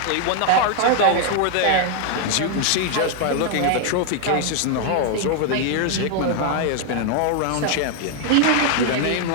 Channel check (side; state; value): both; different; correlation 0.00